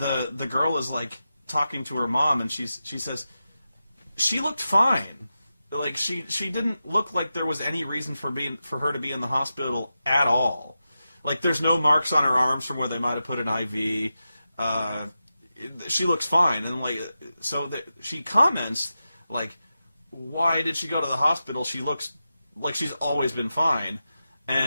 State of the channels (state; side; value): inverted; both; correlation -0.91